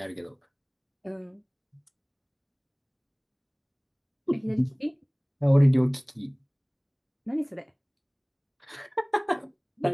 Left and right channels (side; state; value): both; identical; correlation 1.00